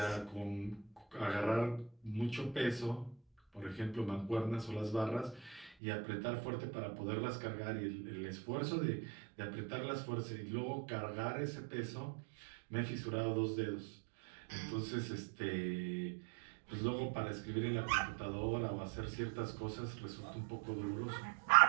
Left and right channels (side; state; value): left; drops out; at 5.7 s